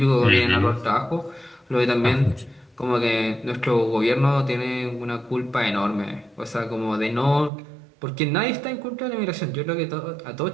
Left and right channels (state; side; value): drops out; left; at 7.5 s